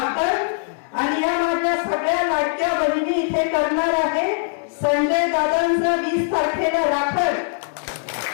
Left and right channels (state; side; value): silent; right; 60 dB below the other